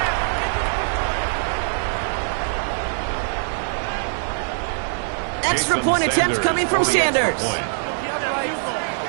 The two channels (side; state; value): left; silent; 55 dB below the other